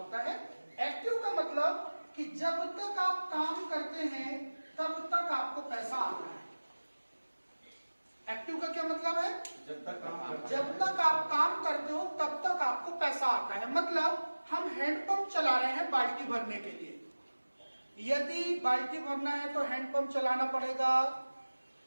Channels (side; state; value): both; inverted; correlation -1.00